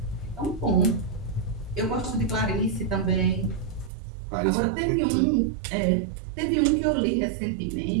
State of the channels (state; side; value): drops out; left; at 3.9 s